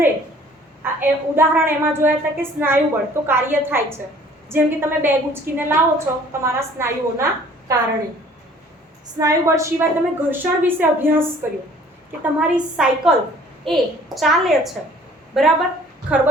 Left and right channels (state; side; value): normal; both; correlation 0.54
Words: ઉદાહરણ એમાં જોયા હતા કે સ્નાયુ બળ તો કાર્ય થાય છે. જેમ કે તમે બેગ ઉચકીને લાવો છો તમારા સ્નાયુઓના કારણે. સ્નાયુ બળ સિવાય તમે ઘર્ષણ વિશે અભ્યાસ કર્યો કે તમારી સાયકલ એ ચાલે છે. બરાબર,